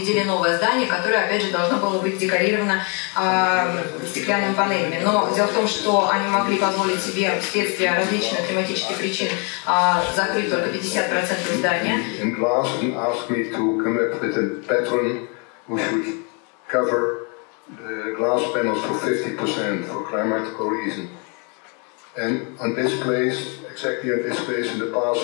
новое здание, которое, опять же, должно было быть декорировано стеклянными панелями. Но дело в том, что они могли позволить себе вследствие различных климатических причин закрыть только 50% здания. The glass panels for 50% for climatical reason. And on this place, exactly on this place in the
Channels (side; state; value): right; quieter; 34.9 dB